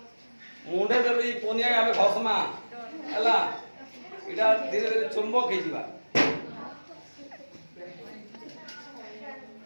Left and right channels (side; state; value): both; inverted; correlation -1.00